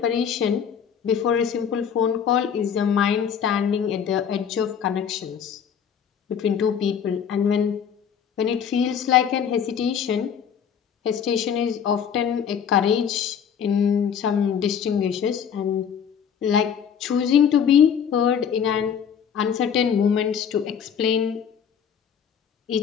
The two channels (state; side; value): quieter; right; 7.8 dB